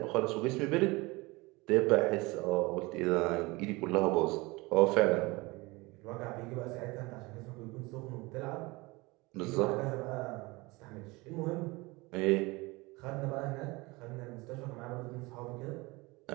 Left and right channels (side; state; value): left; quieter; 23.6 dB